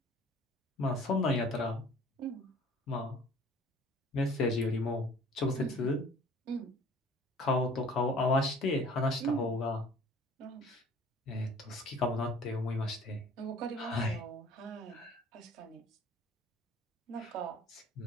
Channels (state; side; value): normal; both; correlation 0.50